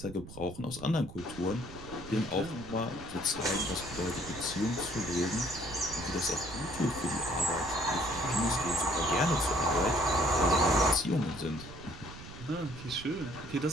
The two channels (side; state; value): right; noise; rumble, 14 dB below the sound